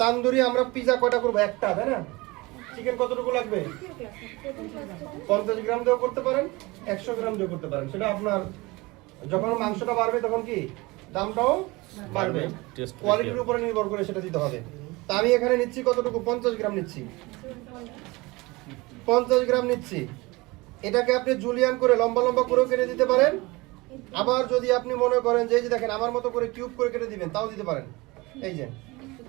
তান্দুরি আমরা পিজা কয়টা করবো? একটা, তাই না? চিকেন কতটুকু লাগবে? 50 গ্রাম দিয়েও করতে পারেন, 100 গ্রাম দিয়েও করতে পারেন। সেটা আপনার, যখন মাংসটা বাড়বে তখন কি দামটাও বাড়বে, কোয়ালিটির উপরে নির্ভর করে সেটা দিতে হবে। তা আমি এখানে নিচ্ছি কতটুকু? 50 গ্রাম নিচ্ছি। 50 গ্রাম নিচ্ছি। এটাকে আপনি জুলিয়ান করে লম্বা লম্বা করেও কেটে দিতে পারেন। আবার যদি আপনি মনে করেন যে এই যে দেখেন আমার মতো করে কিউব করে কেটে দিবেন, তাও দিতে পারেন। এই যে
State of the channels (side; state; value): left; quieter; 23.1 dB